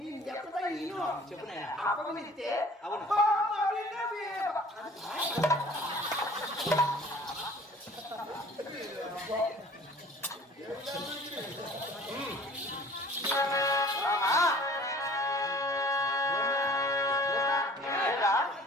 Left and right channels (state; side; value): normal; both; correlation 0.49